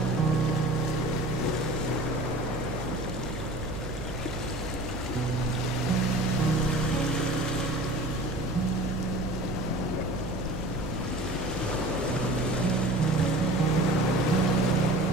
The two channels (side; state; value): right; noise; hum, 9 dB below the sound